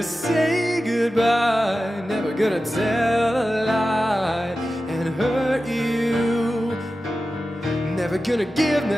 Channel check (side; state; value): both; normal; correlation 0.94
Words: say goodbye, never gonna tell a lie and hurt you, never gonna give you